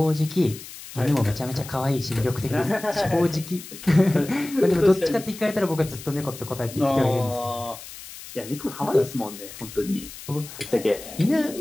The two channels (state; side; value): noise; left; hiss, 14 dB below the sound